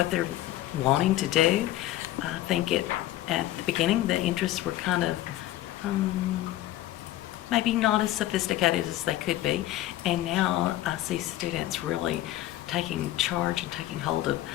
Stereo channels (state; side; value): quieter; right; 14.7 dB